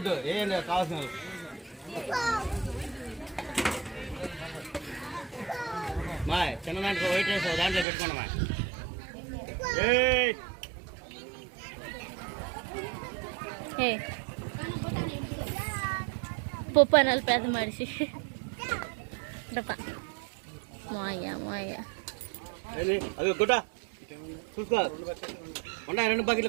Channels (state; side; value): drops out; left; at 7.9 s